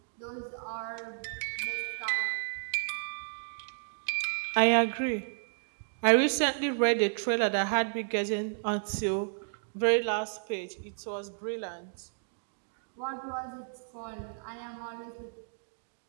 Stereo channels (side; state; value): left; silent; digital silence